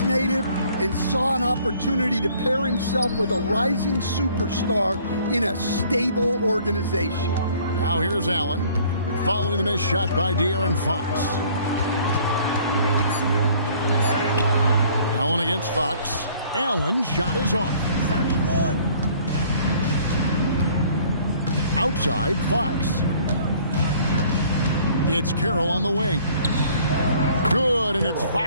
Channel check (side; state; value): both; inverted; correlation -0.56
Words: native and saw an opportunity to pair himself with a rising superstar in a stable organization. Now here's Allen, following the missed shot by De'Aaron Fox. Allen against Fox. Allen shot is off. Outside Fox. It's Carroll on the wing. Good, and it's